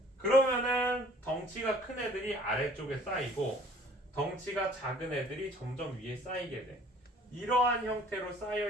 그러면은 덩치가 큰 애들이 아래쪽에 쌓이고 덩치가 작은 애들이 점점 위에 쌓이게 돼. 이러한 형태로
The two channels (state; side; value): normal; both; correlation 0.54